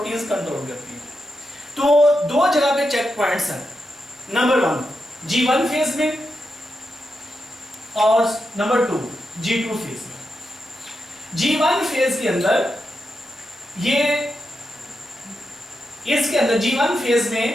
कंट्रोल करती है। तो दो जगह पे चेक पॉइंट्स हैं, नंबर 1 G1 फेज में और नंबर 2 G2 फेज में। G1 फेज के अंदर ये इसके अंदर G1 फेज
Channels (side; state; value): both; normal; correlation 0.86